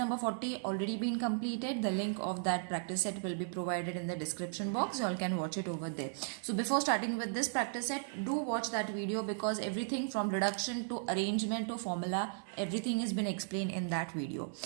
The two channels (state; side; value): silent; left; 54 dB below the other